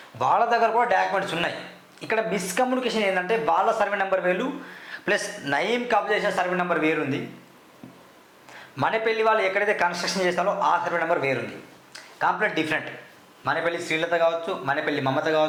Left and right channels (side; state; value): both; identical; correlation 1.00